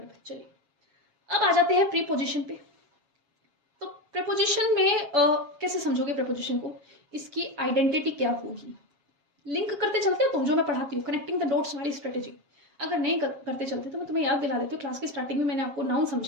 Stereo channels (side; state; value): left; late; 7.4 ms